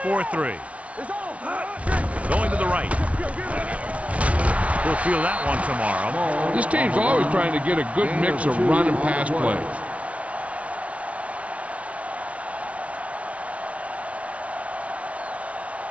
It's on. Going to the right. We'll feel that one tomorrow. This team's always trying to get a good mix of run and pass plays.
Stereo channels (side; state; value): left; late; 0.064 ms